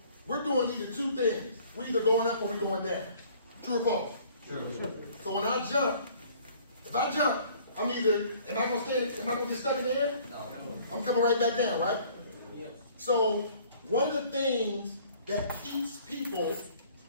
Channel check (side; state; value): both; inverted; correlation -0.55